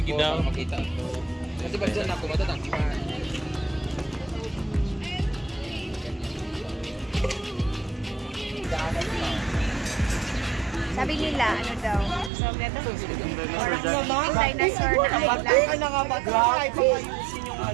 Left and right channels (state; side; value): drops out; left; at 12.3 s